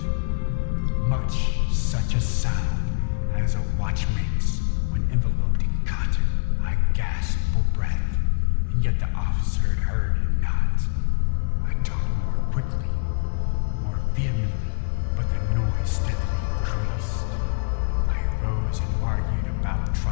much such a sound as a watch makes when enveloped in cotton. I gasped for breath, and yet the officer had heard it not. I talked more quickly, more vehemently, but the noise steadily increased. I rose and argued about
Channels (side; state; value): right; silent; digital silence